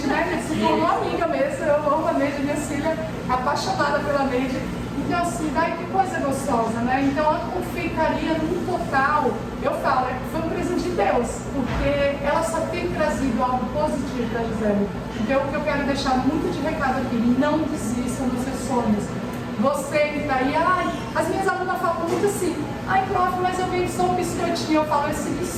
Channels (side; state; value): both; identical; correlation 1.00